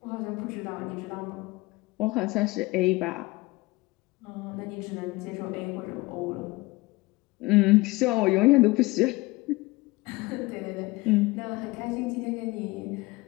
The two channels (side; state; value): right; quieter; 22.1 dB